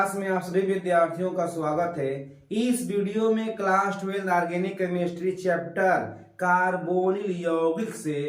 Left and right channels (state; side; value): identical; both; correlation 1.00